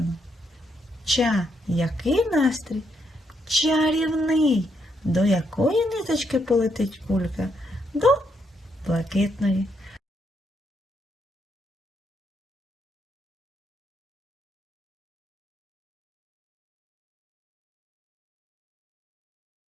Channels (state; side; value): normal; both; correlation 0.77